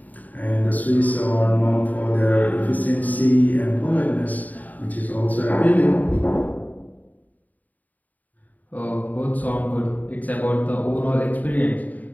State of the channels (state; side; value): late; right; 0.078 ms